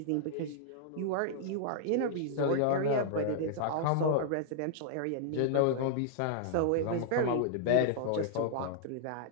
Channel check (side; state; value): both; different; correlation -0.01